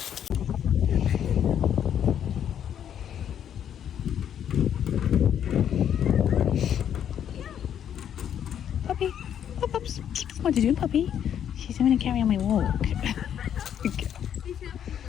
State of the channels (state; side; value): quieter; right; 9.4 dB